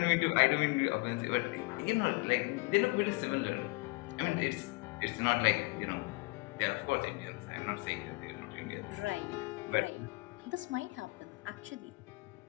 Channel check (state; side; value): quieter; right; 26.6 dB